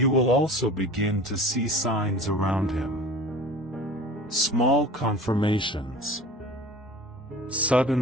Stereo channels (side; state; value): both; normal; correlation 0.41